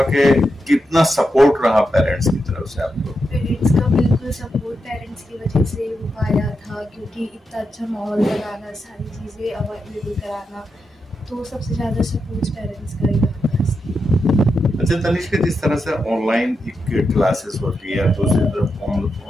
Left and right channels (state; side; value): normal; both; correlation 0.86